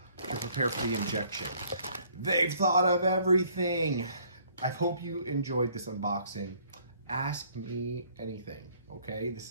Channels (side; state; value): both; inverted; correlation -0.61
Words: to prepare for the injection. They've thought of everything. I hope you enjoyed this unboxing. Ask me anything, okay? This